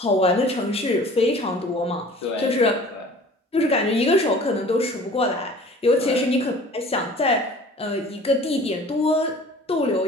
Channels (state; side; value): normal; both; correlation 0.46